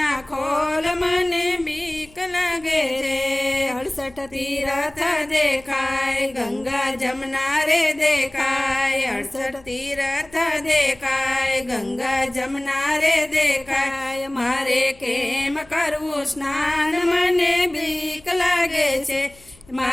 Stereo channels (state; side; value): noise; left; hum, 26 dB below the sound